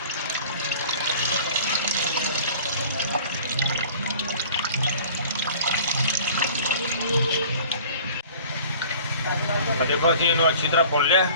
देखो असं इनू अच्छी तरह भुन लिया,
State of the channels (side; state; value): both; inverted; correlation -0.46